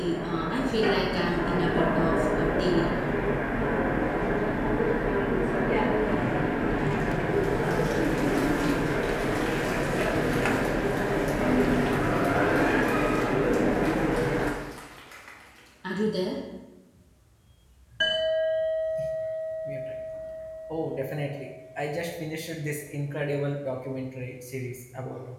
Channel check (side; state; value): both; identical; correlation 1.00